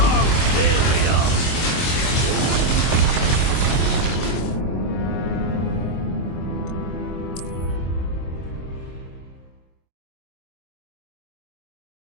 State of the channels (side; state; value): right; late; 23 ms